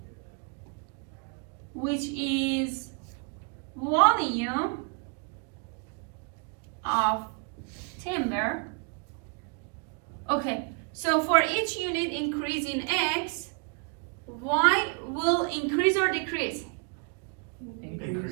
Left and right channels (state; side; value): quieter; left; 36.4 dB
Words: which is volume of timber. Okay, so for each unit increase in x, y will increase or decrease?